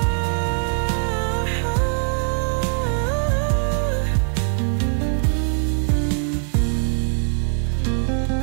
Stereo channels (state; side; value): silent; left; digital silence